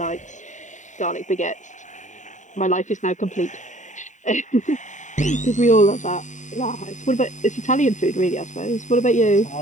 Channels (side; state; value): right; late; 0.36 ms